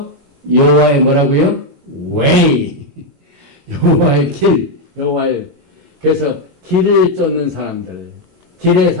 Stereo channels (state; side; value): late; left; 21 ms